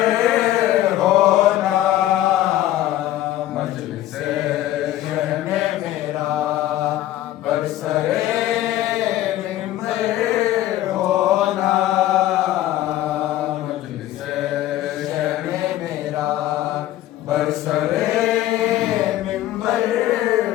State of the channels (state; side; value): quieter; right; 14.0 dB